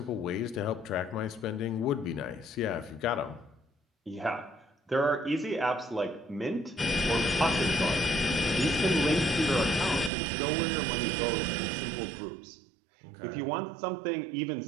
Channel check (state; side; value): drops out; left; at 10.1 s